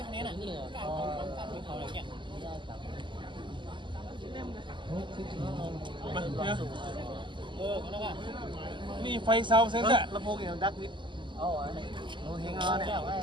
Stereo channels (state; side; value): late; left; 0.23 ms